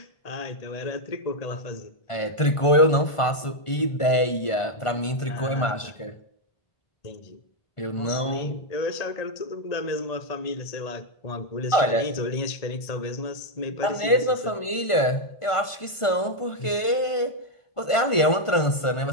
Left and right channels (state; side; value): late; right; 1.5 ms